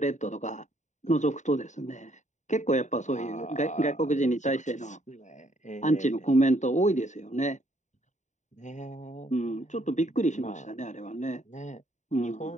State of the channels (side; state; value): right; late; 0.35 ms